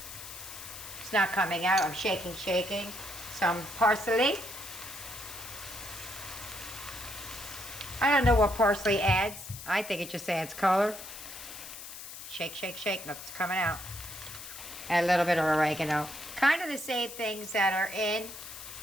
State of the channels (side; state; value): left; noise; hiss, 12 dB below the sound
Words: It's not coming out, I'm shaking. Some parsley. I don't know what parsley adds. I think it just adds color. Shake, nothing's coming out. Add a little bit of oregano. Kind of the same things that are in